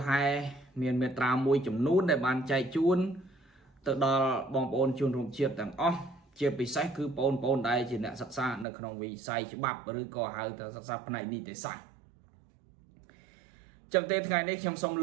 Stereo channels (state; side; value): drops out; left; at 8.7 s